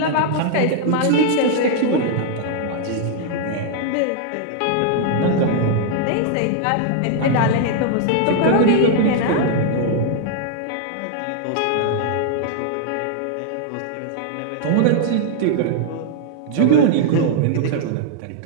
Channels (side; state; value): both; different; correlation -0.01